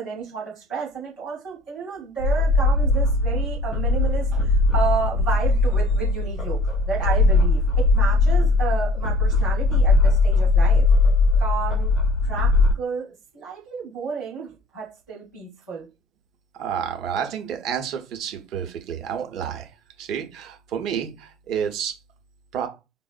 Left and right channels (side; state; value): both; normal; correlation 0.51